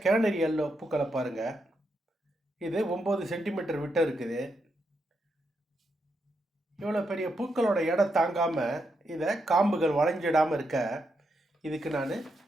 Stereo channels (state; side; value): normal; both; correlation 0.82